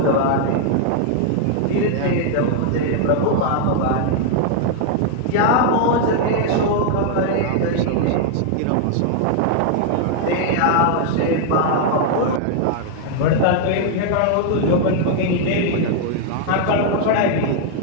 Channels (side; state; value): both; different; correlation 0.00